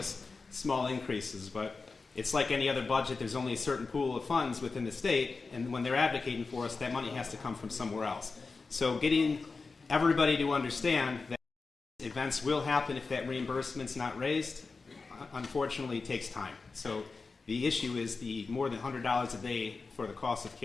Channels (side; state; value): right; quieter; 4.2 dB